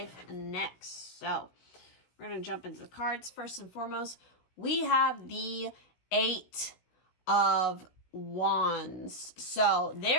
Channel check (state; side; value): late; right; 16 ms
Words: next. So we're going to jump into the cards. First and foremost, we have the 8 of Wands. So